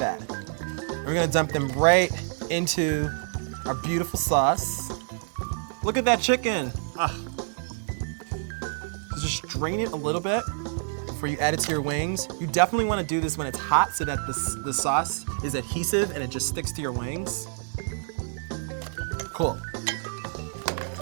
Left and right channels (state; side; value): silent; left; 60 dB below the other